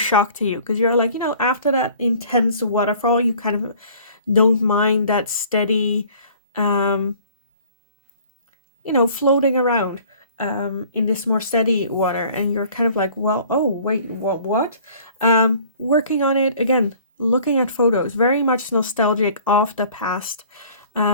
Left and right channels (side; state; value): both; inverted; correlation -0.52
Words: to you because you're like, after that intense waterfall, you kind of don't mind that steady, floating around in this more steady water, and you're kind of like, well, oh wait, what? Working on it again, looking at photos, very much nostalgic of the past